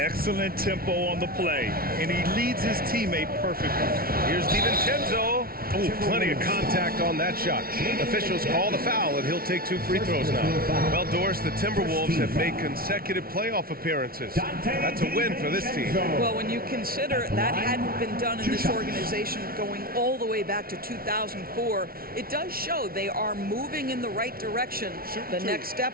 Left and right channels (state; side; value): late; left; 0.43 ms